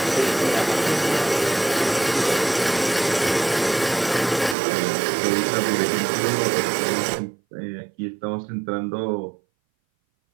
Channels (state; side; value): drops out; left; at 4.5 s